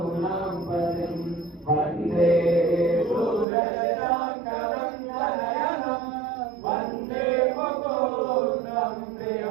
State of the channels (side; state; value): left; drops out; at 3.5 s